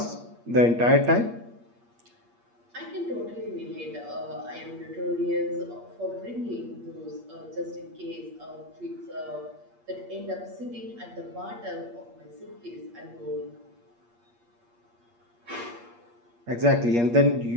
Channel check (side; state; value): left; late; 8.5 ms